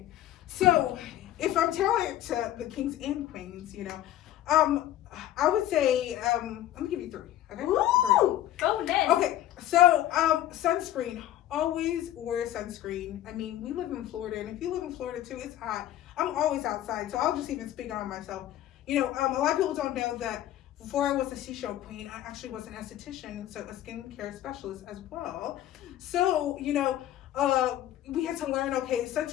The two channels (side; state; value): right; quieter; 13.0 dB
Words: so if I'm telling it to the kings and queens, you know, I would say, let me give you three. Okay. Ooh, bonus. Okay, so sunscreen. Always wear sunscreen. I mean, we live in Florida, and if you live in Florida too, it's hot. I'm always outside, so I'll just even speak on myself. You know, a lot of people don't know that before I was a Seashell Queen, I actually was an esthetician, so a skincare specialist as well. So, you know, we had to learn, okay,